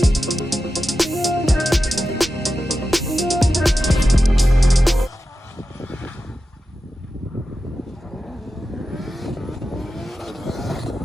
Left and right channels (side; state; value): both; normal; correlation 0.91